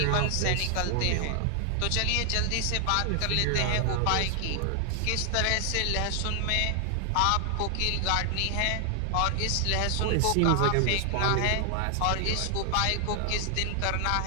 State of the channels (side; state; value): both; different; correlation 0.00